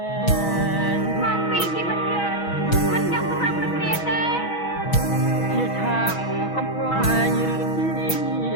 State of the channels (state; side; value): late; right; 6.1 ms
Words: ែងមកពីជីវិតយើងមិនចង់សម្រាប់គ្នាទេជាឆាកកំប្លែងឬជ